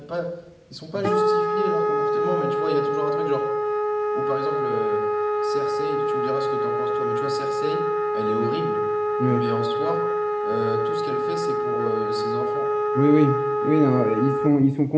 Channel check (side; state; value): both; identical; correlation 1.00